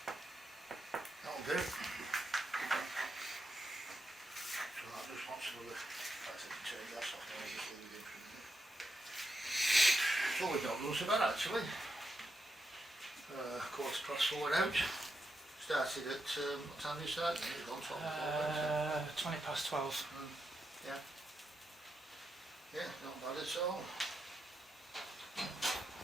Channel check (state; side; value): normal; both; correlation 0.85